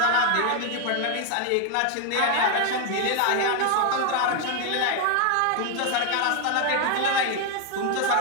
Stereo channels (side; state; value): both; different; correlation 0.01